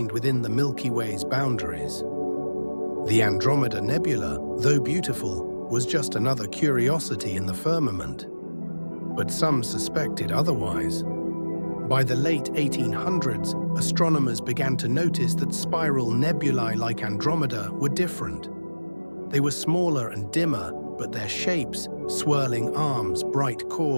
within the Milky Way's boundaries. The Andromeda Nebula, though beautiful, was just another curiosity in the firmament. But some suspected otherwise. By the late 1800s, astronomers began to notice that spiral nebulae like Andromeda were different. They were smaller and dimmer, but their shapes, swirling arms, bright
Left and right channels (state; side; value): inverted; both; correlation -1.00